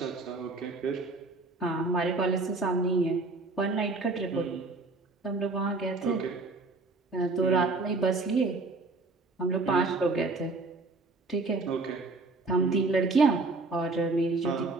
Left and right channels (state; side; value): quieter; left; 3.5 dB